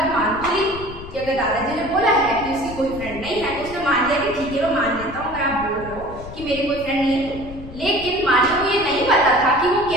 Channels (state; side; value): noise; left; rumble, 14 dB below the sound